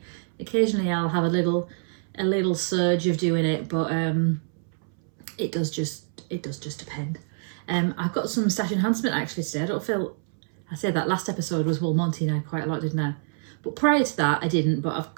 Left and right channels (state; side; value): silent; left; 61 dB below the other